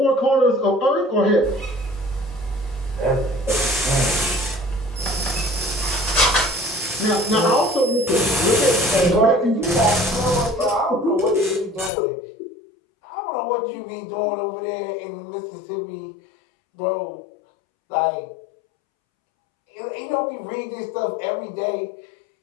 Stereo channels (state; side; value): drops out; right; at 11.9 s